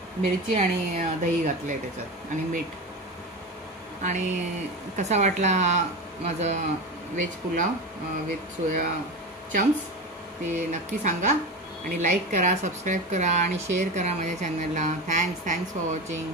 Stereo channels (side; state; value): both; normal; correlation 0.24